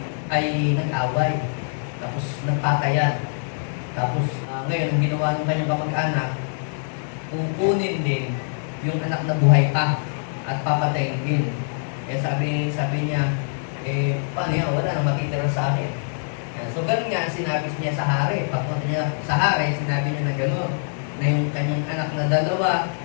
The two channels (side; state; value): right; silent; digital silence